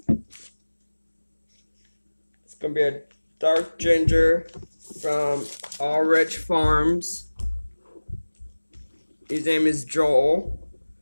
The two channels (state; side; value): inverted; both; correlation -1.00